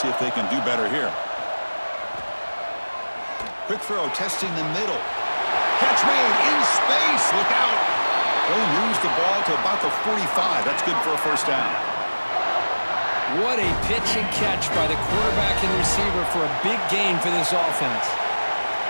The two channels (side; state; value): both; inverted; correlation -1.00